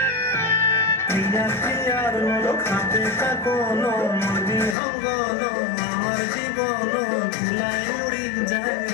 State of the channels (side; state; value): right; drops out; at 4.8 s